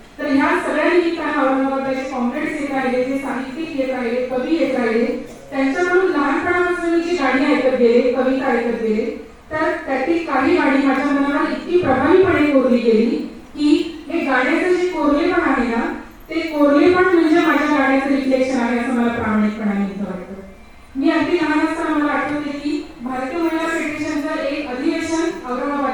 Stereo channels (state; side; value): identical; both; correlation 1.00